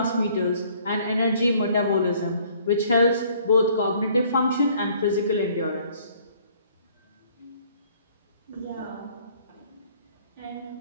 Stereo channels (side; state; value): both; inverted; correlation -0.59